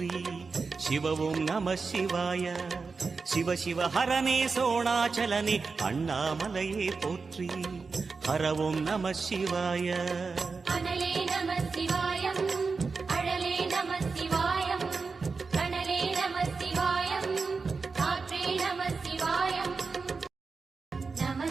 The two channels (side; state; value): left; quieter; 4.6 dB